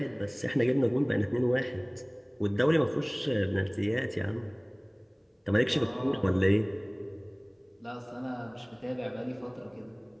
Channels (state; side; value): identical; both; correlation 1.00